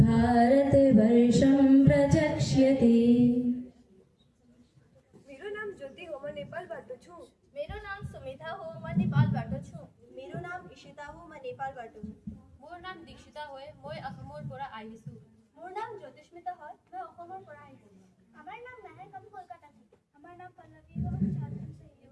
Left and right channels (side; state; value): both; identical; correlation 1.00